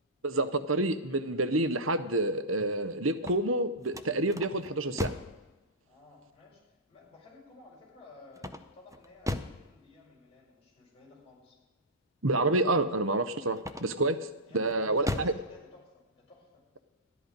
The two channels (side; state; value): both; normal; correlation -0.13